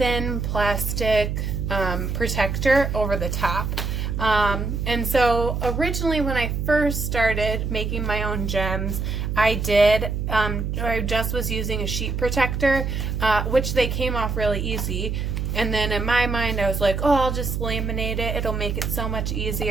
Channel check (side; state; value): right; noise; hum, 2 dB below the sound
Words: plastic protector over the top. And so originally when I first started making my own gems, I just was using a sheet protector, which they came off really easy. And then in my mind, I was like, oh, I'll just laminate it. It'll make it so much